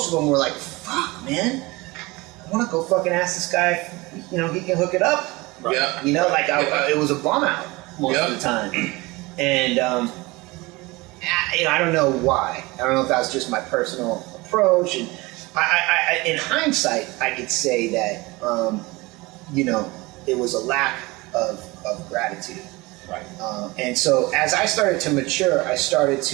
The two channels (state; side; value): quieter; left; 22.8 dB